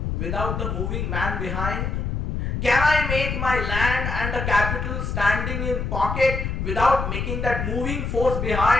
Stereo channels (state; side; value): noise; left; rumble, 2 dB below the sound